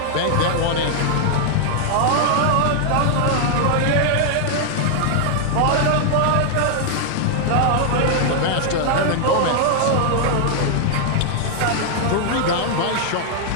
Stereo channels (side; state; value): both; different; correlation 0.00